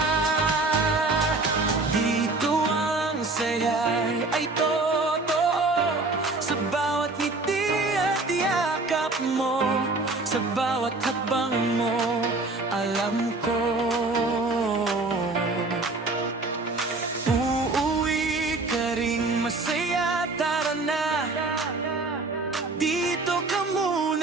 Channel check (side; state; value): left; quieter; 3.3 dB